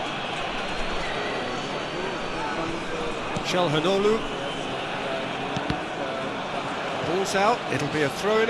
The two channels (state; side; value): identical; both; correlation 1.00